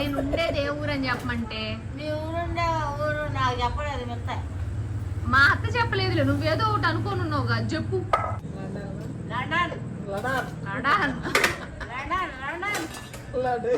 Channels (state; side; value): identical; both; correlation 1.00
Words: ఉండేది ఏ ఊరు అని చెప్పమంటే ఊరు నాకు చెప్పలేదు మెత్త. మా అత్త చెప్పలేదు, నువ్వేదో ఒకటి అనుకోనున్నావు కదా చెప్పు.